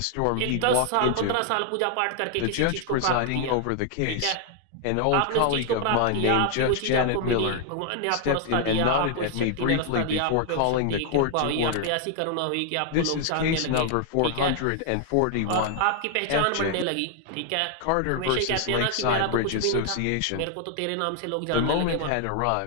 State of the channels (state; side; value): different; both; correlation 0.00